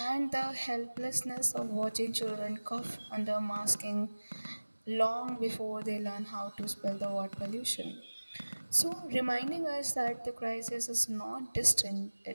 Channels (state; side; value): inverted; both; correlation -1.00